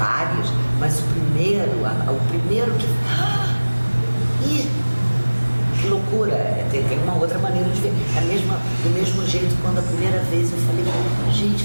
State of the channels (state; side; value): inverted; both; correlation -1.00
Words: mas o primeiro que. Ih, que loucura! Tem uma outra maneira de ver. Do mesmo jeito, quando a primeira vez eu falei, gente,